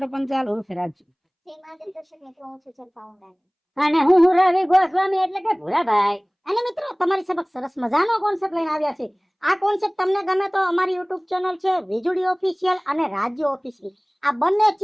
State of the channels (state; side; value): identical; both; correlation 1.00